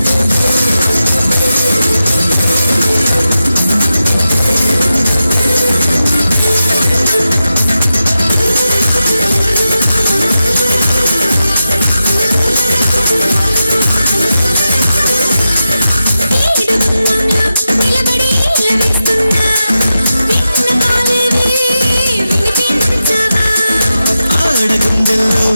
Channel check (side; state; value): both; inverted; correlation -0.90